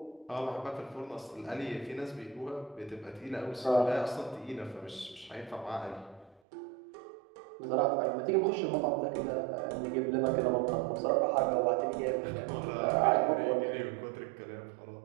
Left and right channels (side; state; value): left; drops out; at 6.4 s